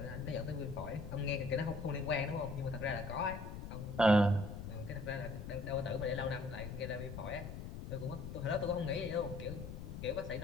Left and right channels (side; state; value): left; noise; rumble, 8 dB below the sound